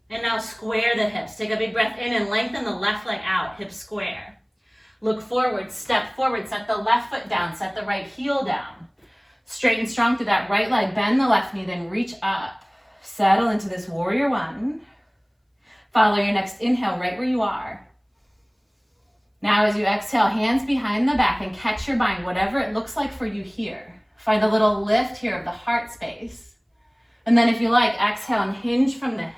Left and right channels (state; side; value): identical; both; correlation 1.00